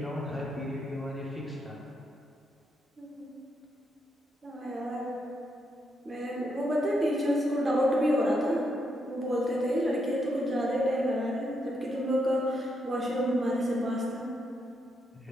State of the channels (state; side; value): normal; both; correlation 0.80